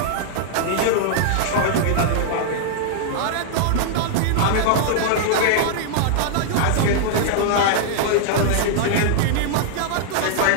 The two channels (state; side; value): different; both; correlation -0.01